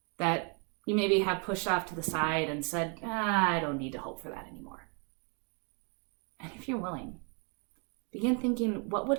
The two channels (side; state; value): left; quieter; 37.3 dB